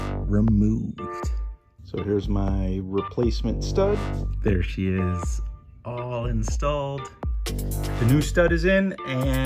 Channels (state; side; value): identical; both; correlation 1.00